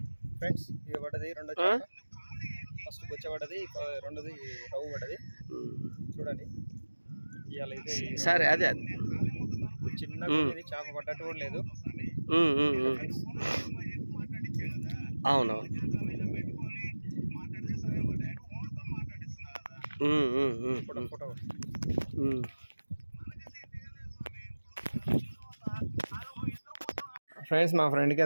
ఫ్రెండ్స్ ఇది పడ్డది రెండో ఫస్ట్ బొచ్చ పడ్డది రెండోది రవ్వు పడ్డది చూడండి ఇవాళ ఇది సరే అదే అది చిన్నగా ఇది చేప పడ్డట్టు కూడా లేదు అవును ఫోటో ఫ్రెండ్స్ మా ఫ్రెండ్కి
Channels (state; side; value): inverted; both; correlation -1.00